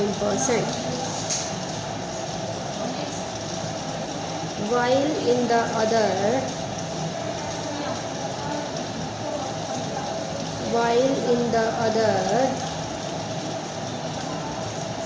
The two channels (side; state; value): both; identical; correlation 1.00